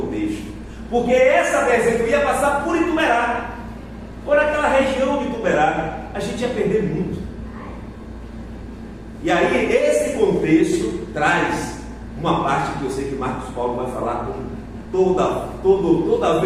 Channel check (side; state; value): both; identical; correlation 1.00